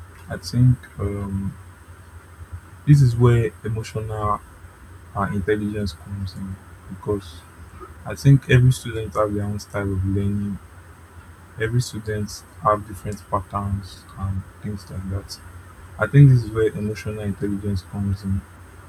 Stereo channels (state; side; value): identical; both; correlation 1.00